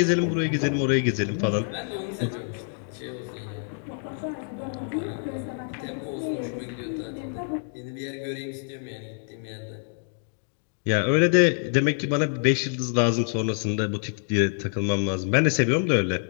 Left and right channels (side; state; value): right; silent; 59 dB below the other